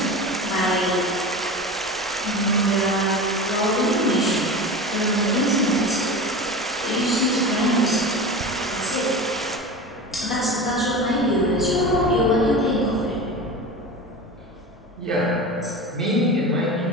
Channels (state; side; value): normal; both; correlation 0.30